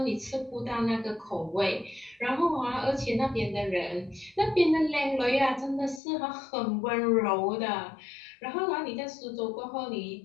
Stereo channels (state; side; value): drops out; right; at 6.0 s